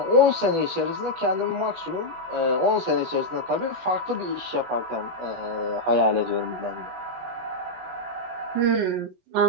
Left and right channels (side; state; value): left; late; 16 ms